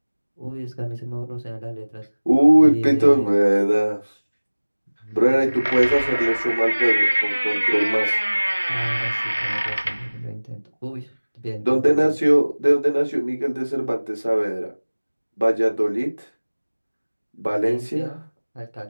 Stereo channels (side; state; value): both; inverted; correlation -1.00